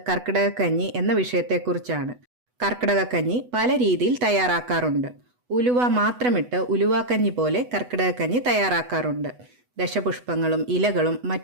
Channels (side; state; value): left; late; 8.1 ms